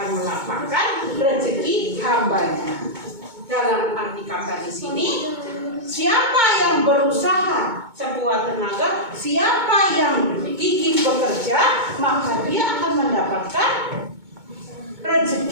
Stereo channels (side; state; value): left; late; 2.2 ms